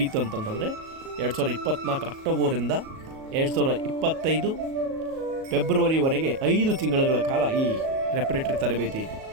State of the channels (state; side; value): late; left; 37 ms